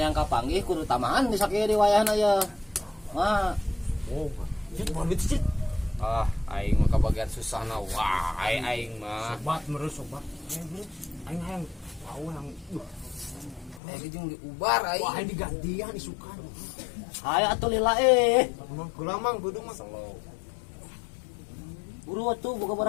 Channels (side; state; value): right; drops out; at 13.8 s